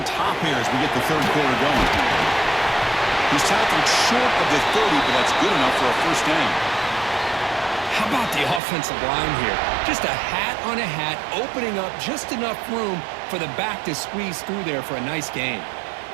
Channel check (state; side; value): drops out; left; at 8.6 s